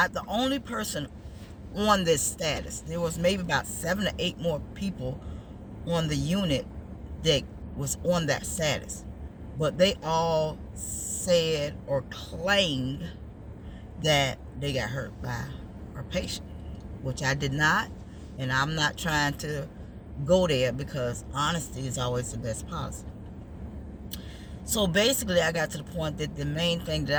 the only person on this status. There was maybe about 7 to 8 more people on the unit that was on that status, but they all said or claimed that they got hurt by our patient, which I did not. And I'm not trying to go there because honesty is always the best policy. So basically, I got to the point that the main thing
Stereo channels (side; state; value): both; identical; correlation 1.00